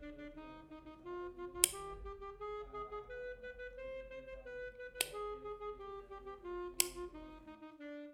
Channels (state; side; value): identical; both; correlation 1.00